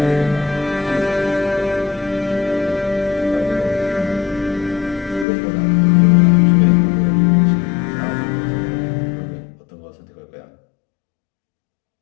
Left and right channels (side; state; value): right; drops out; at 5.2 s